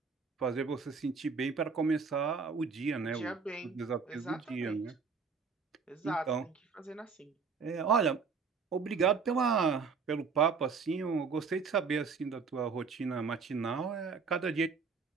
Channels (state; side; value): quieter; left; 5.4 dB